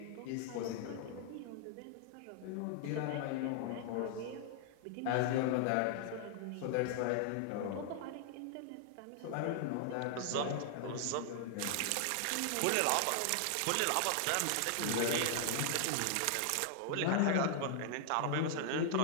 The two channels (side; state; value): both; different; correlation 0.00